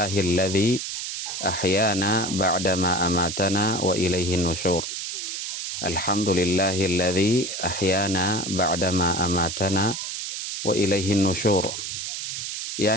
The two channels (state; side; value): noise; right; hiss, 5 dB below the sound